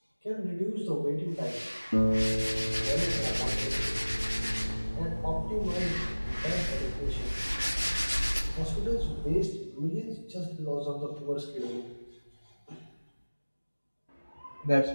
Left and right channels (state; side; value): inverted; both; correlation -1.00